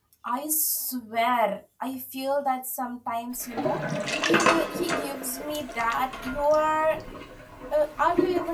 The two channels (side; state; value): both; identical; correlation 1.00